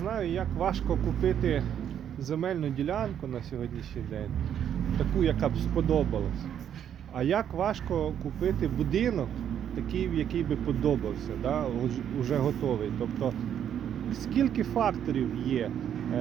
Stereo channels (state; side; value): quieter; left; 9.4 dB